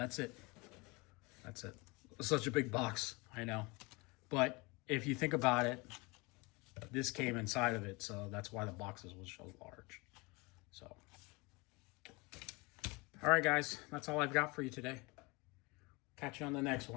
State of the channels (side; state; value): right; quieter; 26.2 dB